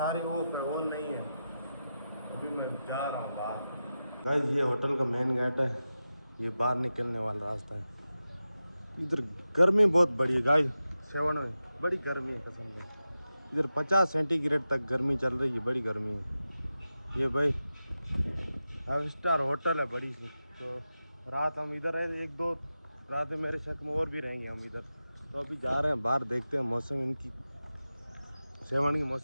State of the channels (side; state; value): both; inverted; correlation -0.92